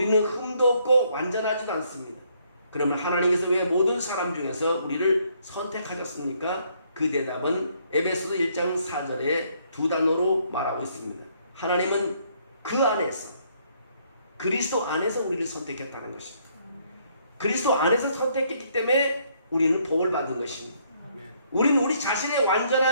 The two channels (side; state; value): both; inverted; correlation -0.68